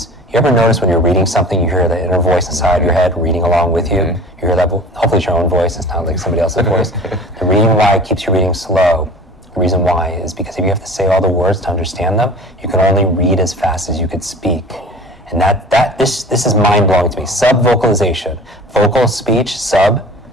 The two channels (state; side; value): normal; both; correlation 0.42